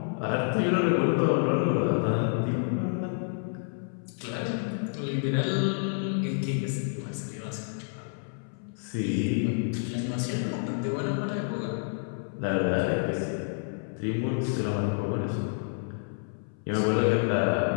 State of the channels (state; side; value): silent; right; 59 dB below the other